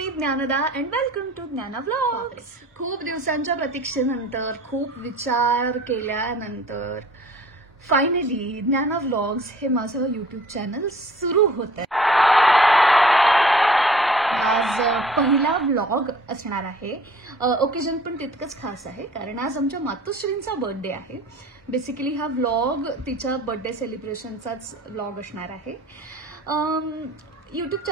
Dnyanada and welcome to ज्ञाना व्लॉग्स. खूप दिवसांच्या प्रतीक्षेनंतर, खूप विचार केल्यानंतर फायनली ज्ञाना व्लॉग्स हे माझं यूट्यूब चॅनल सुरू होत आहे. आज पहिला व्लॉग असणार आहे. ओकेजन पण तितकंच खास आहे कारण आज आमच्या मातोश्रींचा बर्थडे आहे. बेसिकली हा व्लॉग तिच्या बर्थडे सेलिब्रेशनचाच व्लॉग असणार आहे. यूट्यूब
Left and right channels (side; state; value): both; normal; correlation 0.49